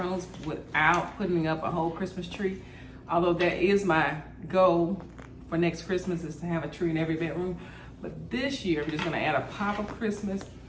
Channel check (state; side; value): identical; both; correlation 1.00